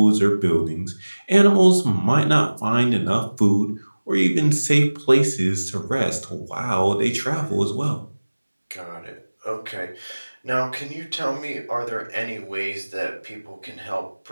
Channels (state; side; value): inverted; both; correlation -1.00